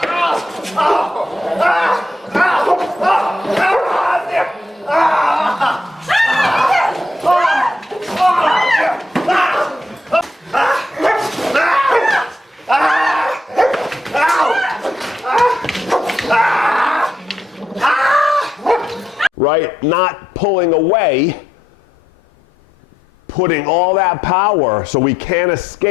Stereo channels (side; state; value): both; normal; correlation 0.80